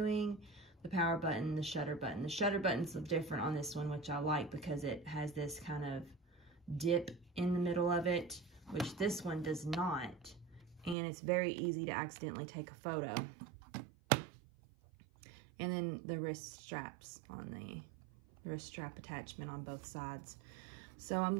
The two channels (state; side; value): drops out; left; at 11.0 s